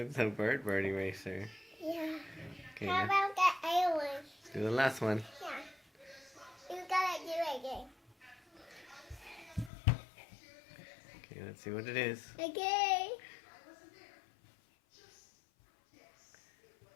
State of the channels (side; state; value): right; drops out; at 9.7 s